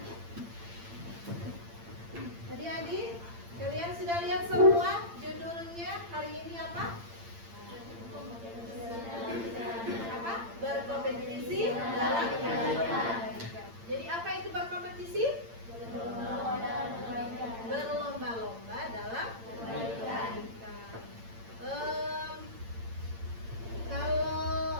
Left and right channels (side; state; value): left; late; 8.8 ms